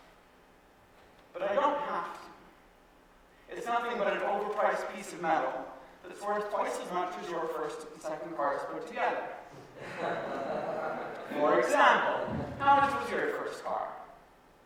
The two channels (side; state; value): both; identical; correlation 1.00